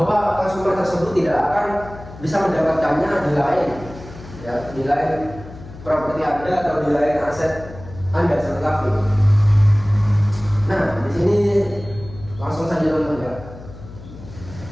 konsumer tersebut tidak akan bisa mendapatkannya di lain, ya, di lain properti Anda atau di lain aset Anda seperti kafe. Nah, di sini langsung saja teman-teman ya.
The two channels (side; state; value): left; noise; hum, 16 dB below the sound